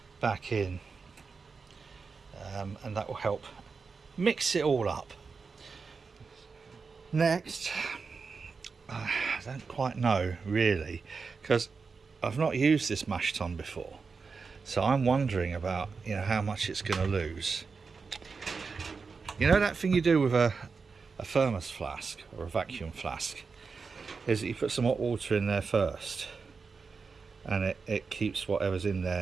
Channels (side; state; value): left; quieter; 4.9 dB